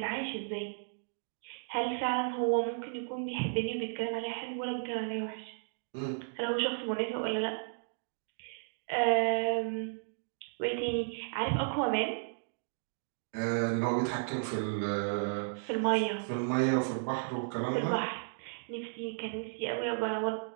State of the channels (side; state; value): left; silent; digital silence